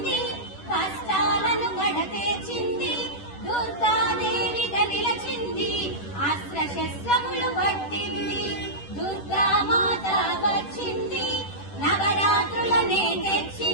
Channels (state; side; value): late; right; 10 ms